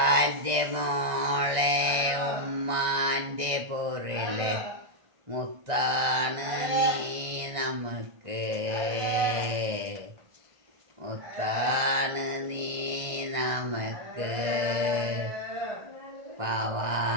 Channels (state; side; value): late; left; 1.5 ms